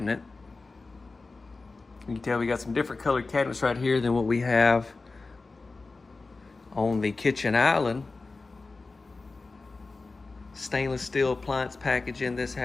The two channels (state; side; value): quieter; right; 3.7 dB